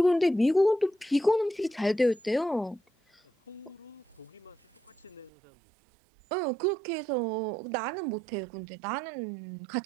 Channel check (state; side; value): drops out; left; at 5.3 s